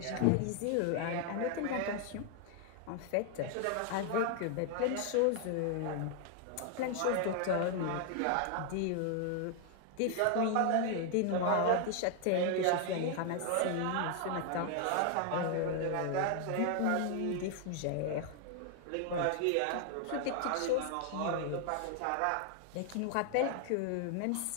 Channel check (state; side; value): different; both; correlation 0.00